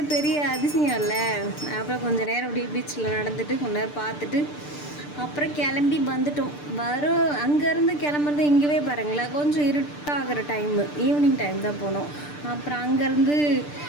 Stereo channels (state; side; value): late; right; 6.8 ms